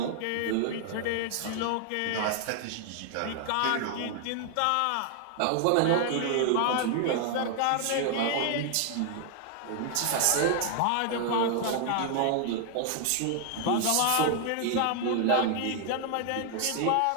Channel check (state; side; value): different; both; correlation 0.00